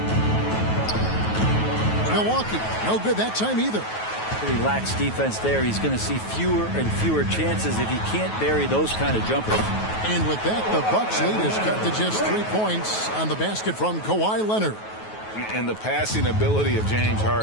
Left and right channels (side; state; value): right; late; 9.3 ms